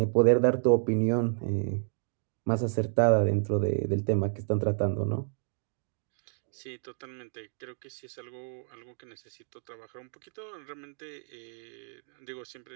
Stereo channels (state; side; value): silent; left; digital silence